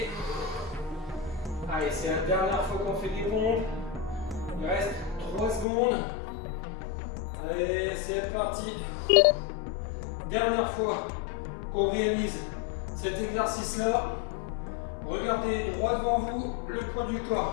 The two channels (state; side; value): drops out; right; at 5.7 s